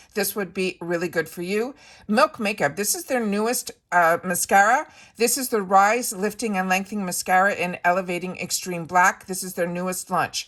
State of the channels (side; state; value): both; identical; correlation 1.00